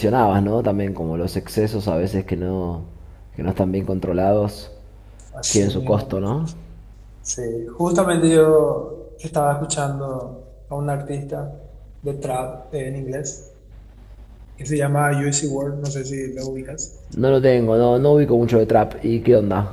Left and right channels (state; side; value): identical; both; correlation 1.00